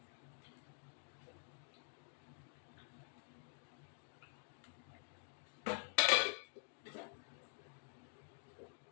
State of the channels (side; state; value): right; silent; digital silence